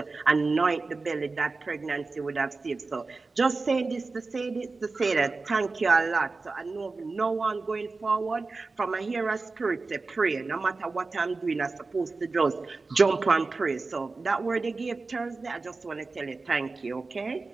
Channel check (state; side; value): quieter; left; 3.8 dB